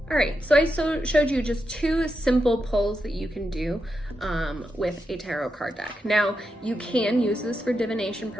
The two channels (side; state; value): both; normal; correlation 0.86